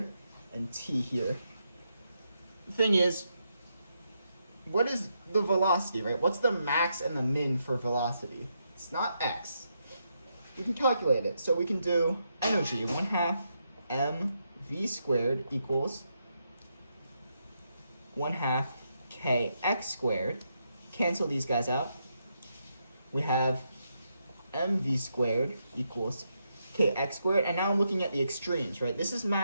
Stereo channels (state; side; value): inverted; both; correlation -0.81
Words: and T here. The thing is, what is the velocity, right? What's the max and the min for velocity? It's not x. We can calculate it. So we can do energy, 1/2 mv squared equals 1/2 kx squared. Cancel these guys out. We have mv squared equals kx squared, and now I'm looking at the extremes, right? This is